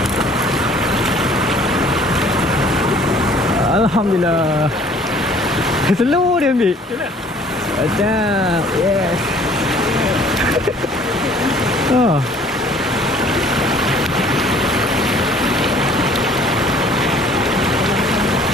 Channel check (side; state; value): both; normal; correlation 0.54